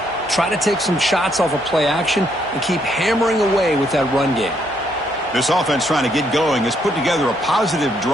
try to take some shots off of play action, and keep hammering away with that run game. This offense trying to get going has put together a positive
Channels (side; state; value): both; normal; correlation 0.73